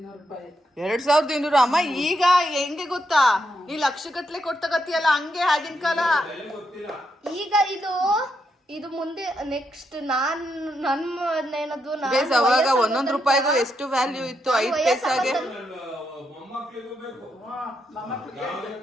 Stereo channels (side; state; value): both; normal; correlation 0.81